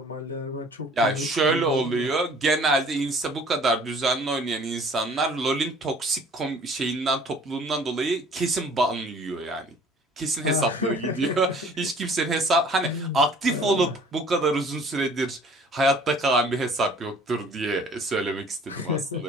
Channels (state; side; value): normal; both; correlation 0.52